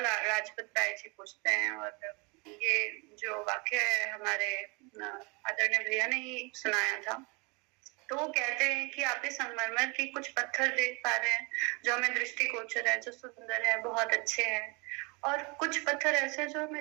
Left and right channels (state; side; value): quieter; left; 29.7 dB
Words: लाजपत राय जी पूछते हैं, और ये जो वाक्य है हमारे आदरणीय भैया ने ही सुनाया था, तो वो कहते हैं कि आप इस संगमरमर की कुछ पत्थर देख पा रहे हैं जो हमें दृष्टिगोचर है, जो सुंदर है, बहुत अच्छे हैं, और कुछ पत्थर ऐसे जो